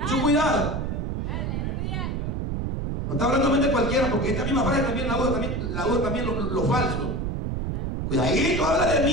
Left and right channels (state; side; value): noise; right; rumble, 2 dB below the sound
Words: Mucho cuidado. No está hablando de cualquiera, porque esta misma frase también la usa también lo falso. Cuidadito, habla de